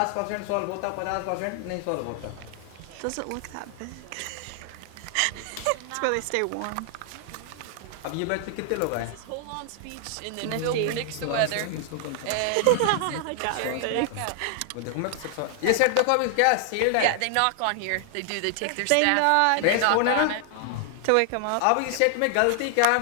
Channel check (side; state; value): both; different; correlation 0.00